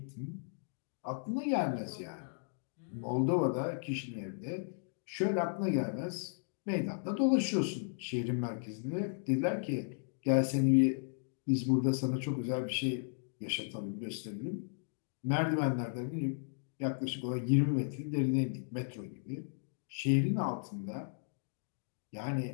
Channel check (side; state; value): right; silent; digital silence